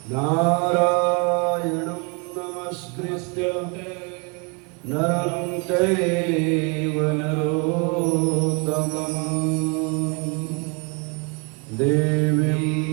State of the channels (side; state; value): left; quieter; 33.0 dB